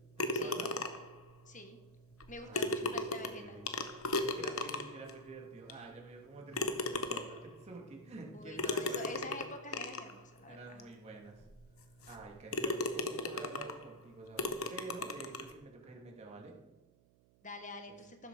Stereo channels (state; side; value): noise; right; hum, 28 dB below the sound